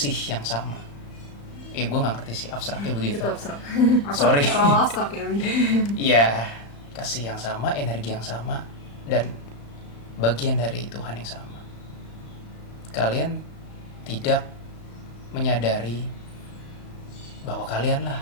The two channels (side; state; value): right; late; 35 ms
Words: yang sama. Gue nggak ngerti sih abstraknya begitu. Itu abstrak. Sorry. Terlalu abstrak ya. Iya, kasih yang sama, energi yang sama, dan bagian dari Tuhan yang sama. Kalian tidak menyadari bahwa